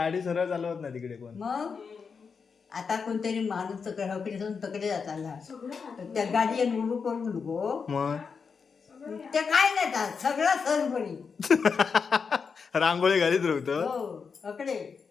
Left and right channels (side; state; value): right; quieter; 5.6 dB